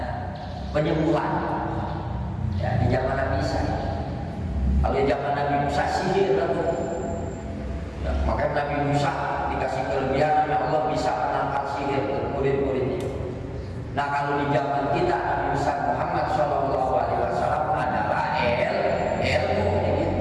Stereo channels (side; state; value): both; identical; correlation 1.00